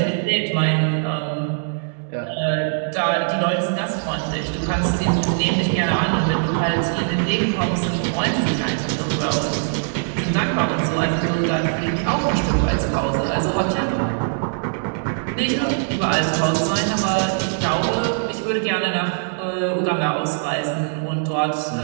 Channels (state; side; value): silent; left; digital silence